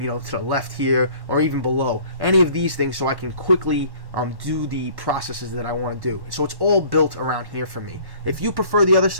the left here, or even below. Any of these things, so I can quickly do the processes that I want to do. So it's all built around here for me. If you prefer the other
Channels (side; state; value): left; late; 1.1 ms